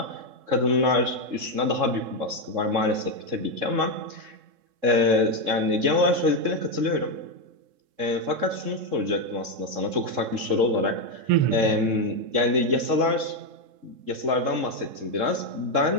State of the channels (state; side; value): late; left; 3.7 ms